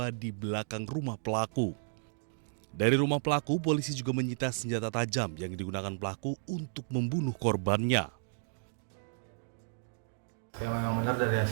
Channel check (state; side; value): silent; left; digital silence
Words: di belakang rumah pelaku. Dari rumah pelaku, polisi juga menyita senjata tajam yang digunakan pelaku untuk membunuh korbannya. Ya, memang benar dari